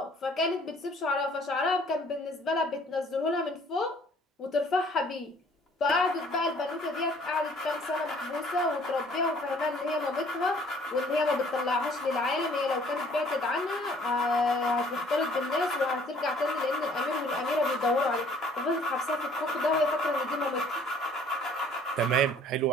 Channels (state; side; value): normal; both; correlation 0.57